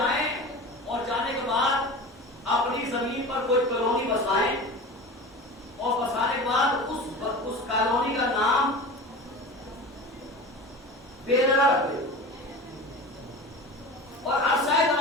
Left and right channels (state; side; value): normal; both; correlation 0.33